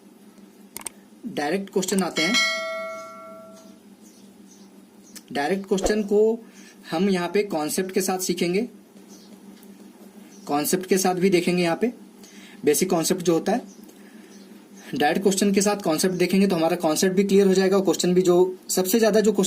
डायरेक्ट क्वेश्चन आते हैं। डायरेक्ट क्वेश्चन को हम यहाँ पे कॉन्सेप्ट के साथ सीखेंगे, कॉन्सेप्ट के साथ भी देखेंगे। यहाँ पे बेसिक कॉन्सेप्ट जो होता है, डायरेक्ट क्वेश्चन के साथ कॉन्सेप्ट देखेंगे तो हमारा कॉन्सेप्ट भी क्लियर हो जाएगा, और क्वेश्चन भी जो सबसे ज्यादा जो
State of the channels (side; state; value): both; identical; correlation 1.00